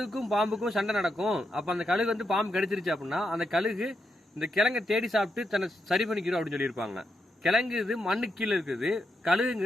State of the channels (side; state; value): both; normal; correlation 0.83